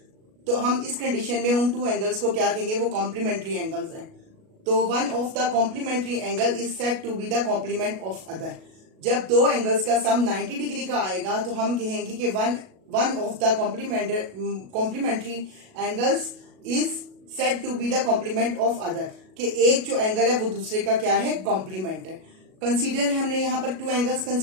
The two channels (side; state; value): left; late; 37 ms